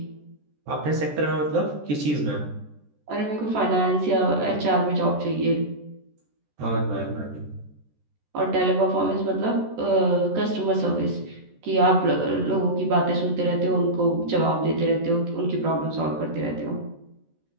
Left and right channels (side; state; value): left; late; 14 ms